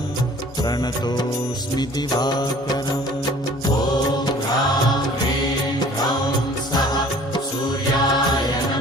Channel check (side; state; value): both; normal; correlation 0.50